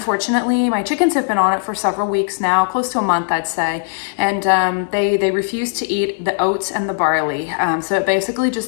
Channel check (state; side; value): silent; right; 67 dB below the other